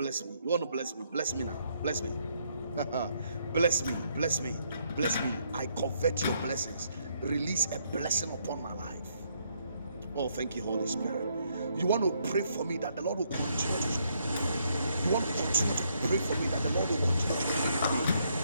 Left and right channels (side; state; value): both; inverted; correlation -0.73